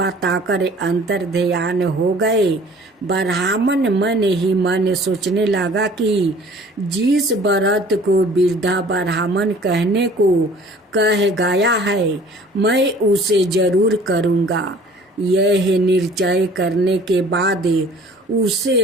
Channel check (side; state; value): both; normal; correlation 0.50